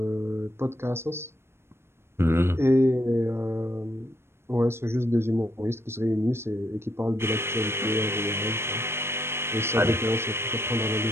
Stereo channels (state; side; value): late; left; 0.12 ms